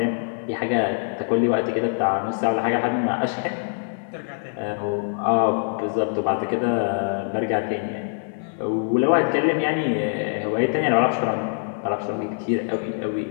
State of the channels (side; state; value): right; silent; digital silence